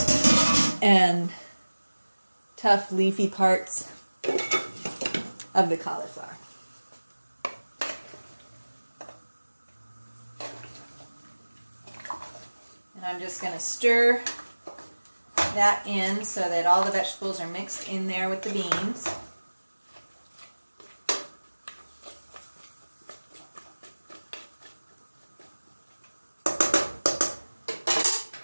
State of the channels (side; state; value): both; inverted; correlation -1.00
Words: and tough leafy parts of the cauliflower. And I'm just going to stir that in so that all the vegetables are mixed in there with the beans.